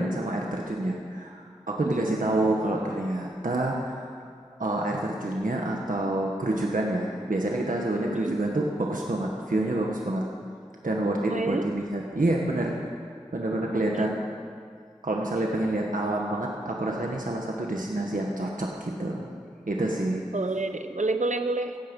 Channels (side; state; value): both; normal; correlation 0.76